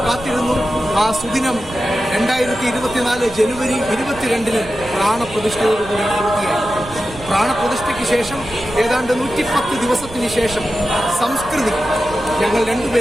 കാത്തിരുന്നു. ആ സുദിനം 2024 ജനുവരി 22 പ്രാണപ്രതിഷ്ഠയോടുകൂടി പൂർത്തിയായി. പ്രാണപ്രതിഷ്ഠയ്ക്ക് ശേഷം ഏതാണ്ട് 110 ദിവസത്തിന് ശേഷം സംസ്കൃതി ഞങ്ങൾ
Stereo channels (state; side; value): noise; right; rumble, 16 dB below the sound